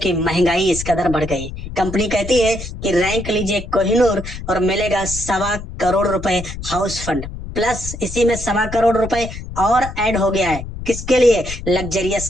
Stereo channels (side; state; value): left; noise; rumble, 9 dB below the sound